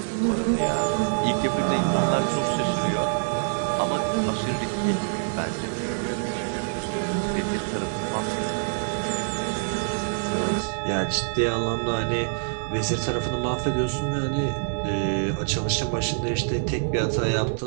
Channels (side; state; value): left; silent; digital silence